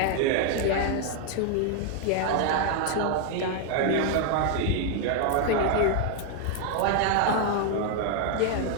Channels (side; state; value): both; different; correlation 0.00